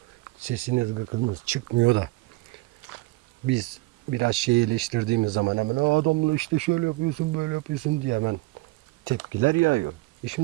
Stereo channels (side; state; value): left; quieter; 21.0 dB